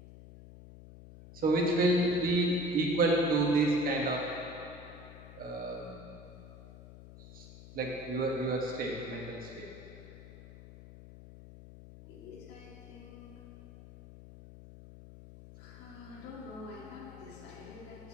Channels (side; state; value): left; noise; hum, 16 dB below the sound